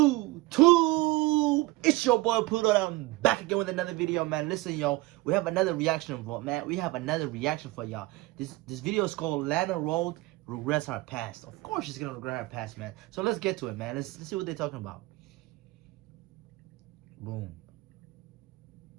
It's your boy Pluto. I'm back again with another video, man. Listen, yo, we have another reaction for man. We have another reaction for y'all. This video is called Lana Rhoades Regrets Her Past. Of course, she's gonna regret her past, man. So let's get to it, man. Let's see what they're talking about. Boom.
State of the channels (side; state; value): left; quieter; 20.3 dB